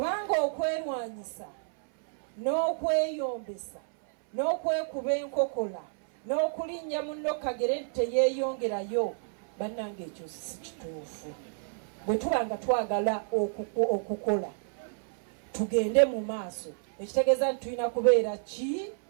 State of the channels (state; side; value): silent; left; 57 dB below the other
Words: okwerwanyisa n'okweyombesa n'okwekuba enkokola n'okulinnya munno kagere teyeeyongerayo, bannange ekyo si kituufu. Bwe tuba nga twagala okukola tugende mu maaso, ekitegeeza nti tulina kubeera ki?